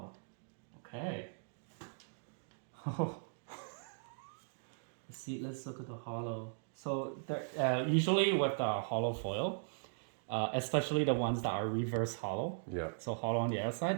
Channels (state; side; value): silent; left; digital silence